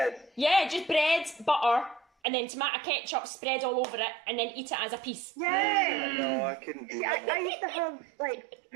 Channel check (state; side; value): drops out; left; at 2.1 s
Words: Yeah, just bread, butter, and then tomato ketchup spread all over it, and then eat it as a piece. Yeah. No, I couldn't do that. I used to have, like,